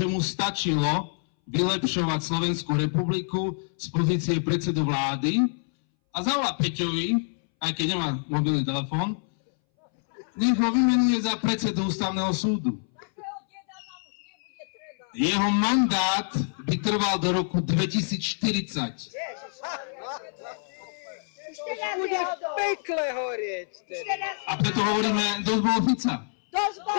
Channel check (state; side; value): silent; right; 60 dB below the other